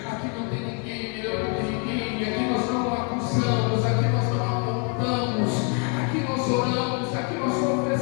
Aqui não tem ninguém melhor do que ninguém, aqui nós não acusamos, aqui nós não apontamos, aqui nós oramos, aqui nós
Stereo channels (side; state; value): right; quieter; 38.3 dB